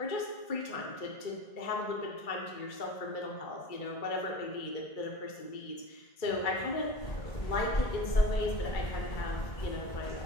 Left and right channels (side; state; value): right; late; 2.3 ms